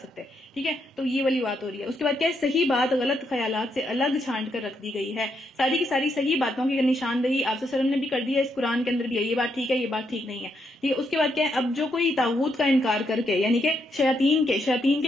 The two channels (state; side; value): normal; both; correlation 0.78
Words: ٹھیک ہے، تو یہ والی بات ہو رہی ہے۔ اس کے بعد کیا ہے، صحیح بات غلط خیالات سے الگ چھانٹ کر رکھ دی گئی ہے، ساری کی ساری صحیح باتوں کی نشاندہی آپ صلی اللہ علیہ وسلم نے بھی کر دی ہے، اس قرآن کے اندر بھی ہے، یہ بات ٹھیک ہے، یہ بات ٹھیک نہیں ہے، ٹھیک ہے۔ اس کے بعد کیا ہے، اب جو کوئی طاغوت کا انکار کر کے، یعنی کہ شیاطین